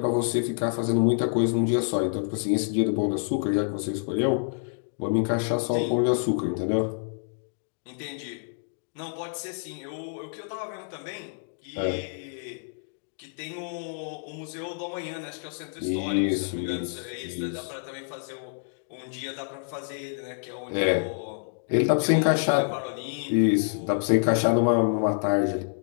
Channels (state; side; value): silent; right; digital silence